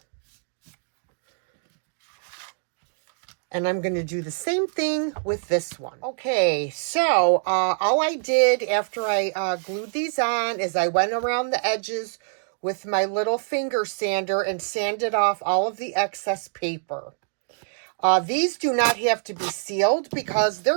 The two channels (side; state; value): left; silent; digital silence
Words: And I'm going to do the same thing with this one. Okay, so all I did after I glued these on is I went around the edges with my little finger sander and sanded off all of the excess paper. These do not have to be sealed because